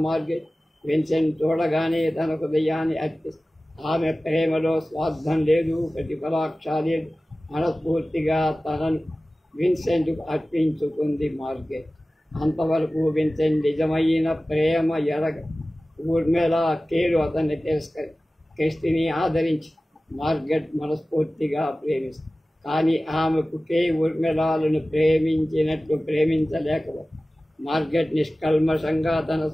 మార్గెట్ విన్సెంట్ చూడగానే తన హృదయాన్ని అర్పిస్తుంది. ఆమె ప్రేమలో స్వార్థం లేదు, ప్రతిఫలాక్ష లేదు. మనస్ఫూర్తిగా తనను విన్సెంట్కు అర్పించుకుంది మార్గెట్. అంతవరకు విన్సెంట్ నిజమైన ప్రేమ ఎరగ. ఊర్మిళ కేరు అతన్ని క్రిస్టిని ఆదరించి మార్గెట్ మనస్ఫూర్తిగా ప్రేమిస్తుంది. కానీ ఆమెకు ఊర్మిళాలను ప్రేమించినట్లు ప్రేమించలేకపోతుంది. మార్గెట్ నిష్కల్మషంగా తన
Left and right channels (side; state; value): both; normal; correlation 0.97